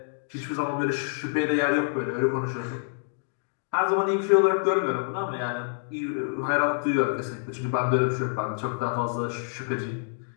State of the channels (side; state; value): right; silent; digital silence